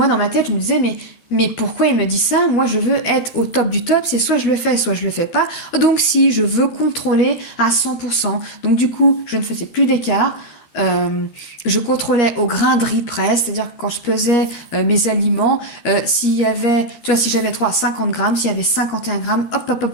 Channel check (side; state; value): right; late; 13 ms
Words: dans ma tête je me disais mais pourquoi il me dit ça? Moi, je veux être au top du top, c'est soit je le fais, soit je le fais pas. Donc si, je veux contrôler à 100%. Donc du coup, je ne faisais plus d'écart. Je contrôlais au grain de riz près, c'est-à-dire que quand je pesais mes aliments, s'il y avait, tu vois, si j'avais 50 grammes, s'il y avait 51 grammes,